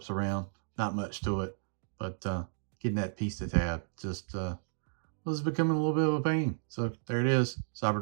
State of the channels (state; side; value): silent; left; digital silence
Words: around. Not much to it, but getting that piece to tab just was becoming a little bit of a pain. So there it is,